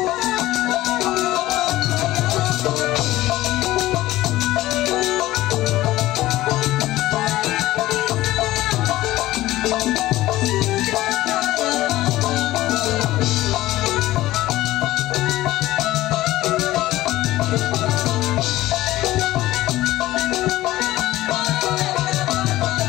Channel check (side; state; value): right; quieter; 16.4 dB